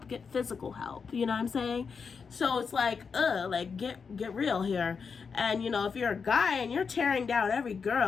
Get physical help. You know what I'm saying? So it's like, like, get real here. And, you know, if you're a guy and you're tearing down every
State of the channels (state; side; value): quieter; right; 5.7 dB